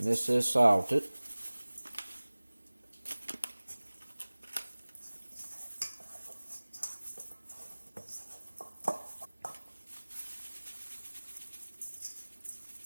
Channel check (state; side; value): inverted; both; correlation -1.00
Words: this is salted.